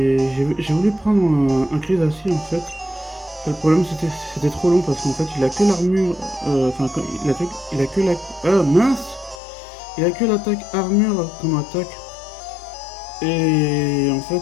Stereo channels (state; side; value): drops out; right; at 9.4 s